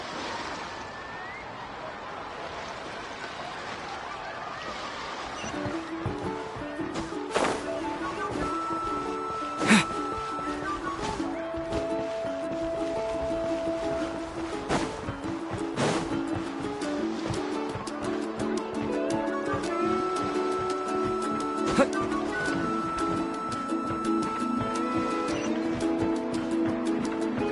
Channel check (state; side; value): identical; both; correlation 1.00